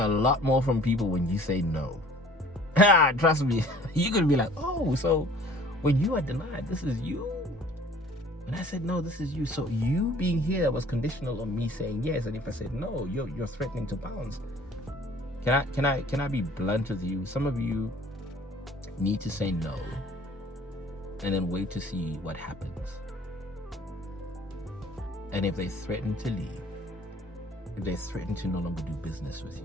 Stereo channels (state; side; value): normal; both; correlation 0.52